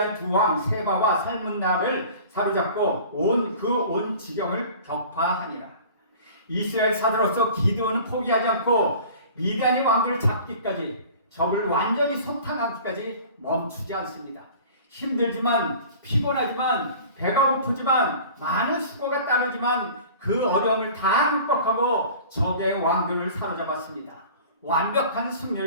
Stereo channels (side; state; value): both; inverted; correlation -0.43